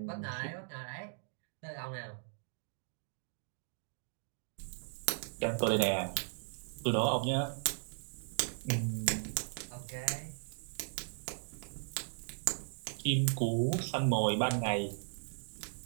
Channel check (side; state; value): left; silent; digital silence